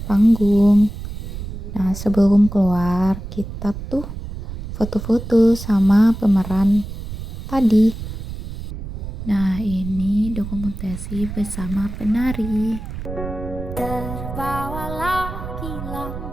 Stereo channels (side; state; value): right; noise; rumble, 9 dB below the sound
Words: panggung. Nah, sebelum keluar, kita tuh foto-foto sama pemeran tadi. Nah, ini dokumentasi bersama penari. Terbawa lagi